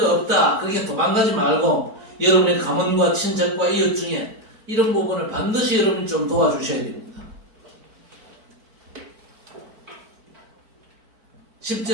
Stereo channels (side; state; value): left; late; 4.5 ms